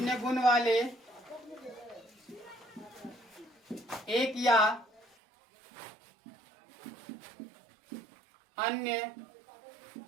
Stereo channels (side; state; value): left; drops out; at 5.1 s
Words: वाले एक या अन्य